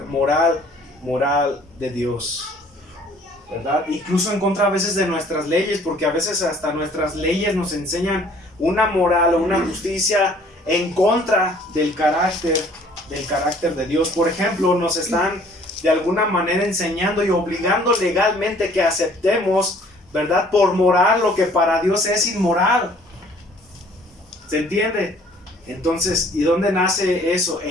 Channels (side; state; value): both; normal; correlation 0.56